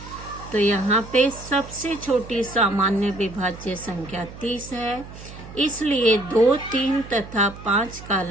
तो यहाँ पे सबसे छोटी सामान्य विभाज्य संख्या 30 है, इसलिए 2, 3 तथा 5 का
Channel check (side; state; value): right; noise; hum, 15 dB below the sound